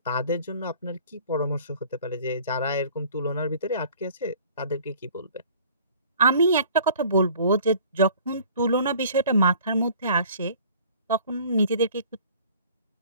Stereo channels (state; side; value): inverted; both; correlation -0.50